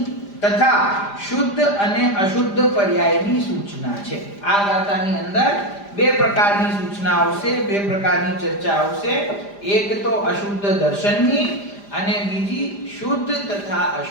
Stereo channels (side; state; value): right; late; 5.0 ms